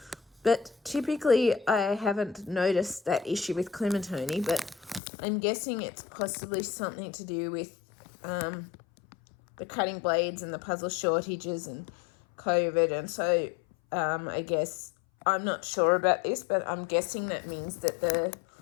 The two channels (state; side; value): drops out; right; at 5.0 s